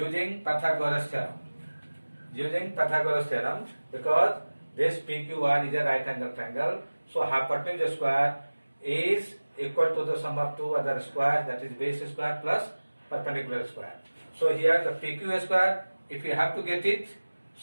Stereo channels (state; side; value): inverted; both; correlation -1.00